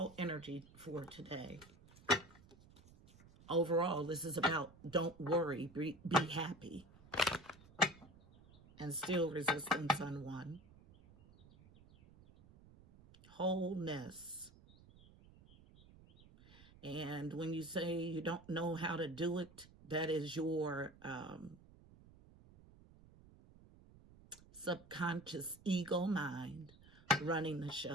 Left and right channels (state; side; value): noise; right; rumble, 23 dB below the sound